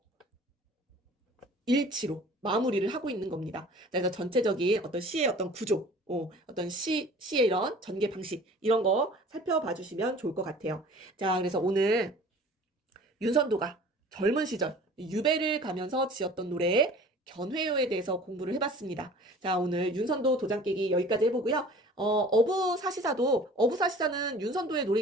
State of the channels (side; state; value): both; normal; correlation 0.46